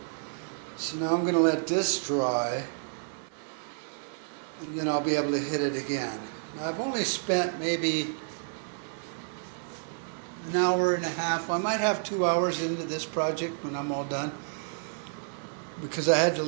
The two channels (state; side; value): silent; left; digital silence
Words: So now I'm going to let this dry, and then I'll be able to hit it again. Now I've only spent maybe an hour and a half. I might have 2 hours into this project when I'm all done, because I had to